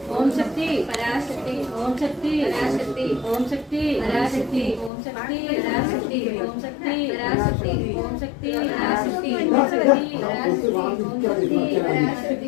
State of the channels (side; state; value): right; drops out; at 4.9 s